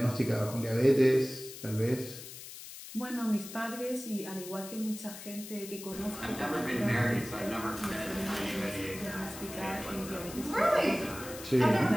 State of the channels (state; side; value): noise; left; hiss, 13 dB below the sound